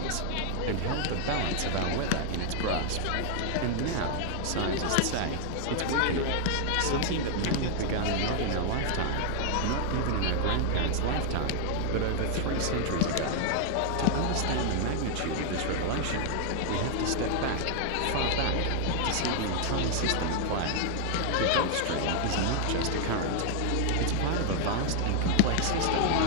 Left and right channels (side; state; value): both; different; correlation 0.00